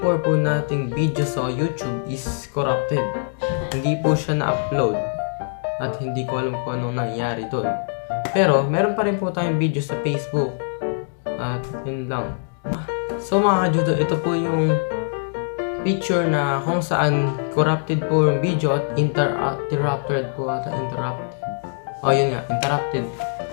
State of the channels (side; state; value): right; silent; digital silence